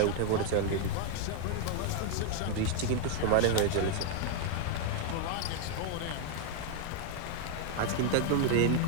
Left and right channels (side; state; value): both; different; correlation 0.00